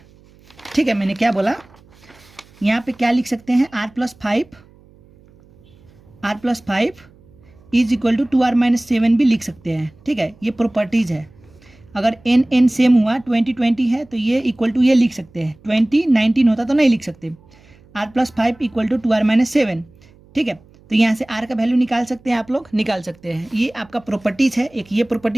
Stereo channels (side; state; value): right; noise; hum, 27 dB below the sound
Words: ठीक है, मैंने क्या बोला? यहाँ पे क्या लिख सकते हैं? R plus 5 is equal to 2R minus 7 भी लिख सकते हैं। ठीक है, ये प्रॉपर्टीज है। अगर n सेम हुआ, 20 है तो ये इक्वल टू ये लिख सकते हैं। 19 होता तो नहीं लिख सकते। R plus 5 equal to 2R minus 7। ठीक है, तो यहाँ से R का वैल्यू निकाल सकते हैं, आप लोग निकाल सकते हैं। ये आपका प्रॉपर्टीज है। एक ये